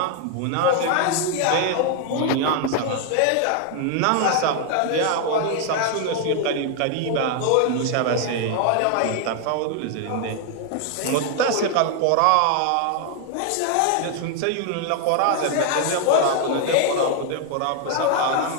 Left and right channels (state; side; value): different; both; correlation 0.00